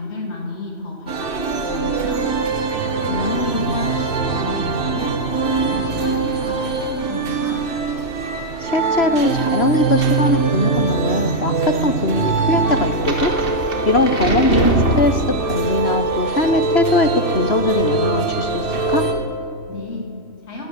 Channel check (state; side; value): late; right; 2.6 ms